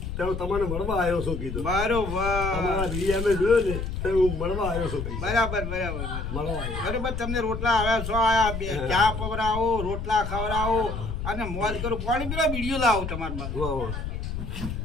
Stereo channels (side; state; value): left; noise; rumble, 5 dB below the sound